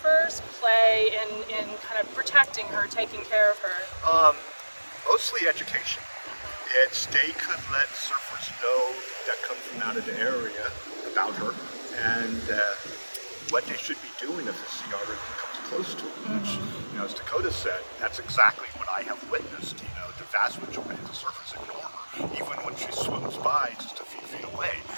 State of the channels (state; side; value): inverted; both; correlation -1.00